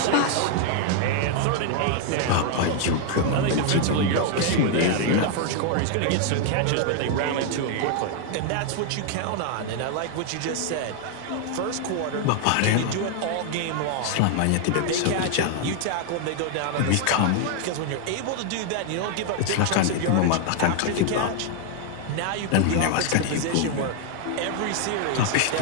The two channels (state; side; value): different; both; correlation 0.00